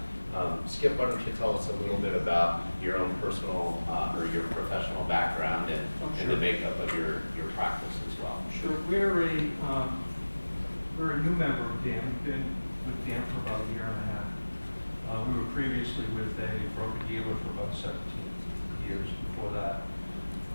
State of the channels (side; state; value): both; inverted; correlation -1.00